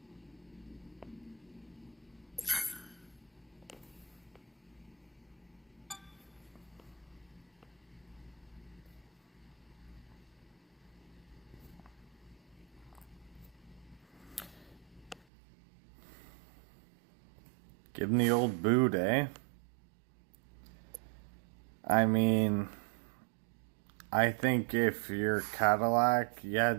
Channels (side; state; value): left; drops out; at 15.2 s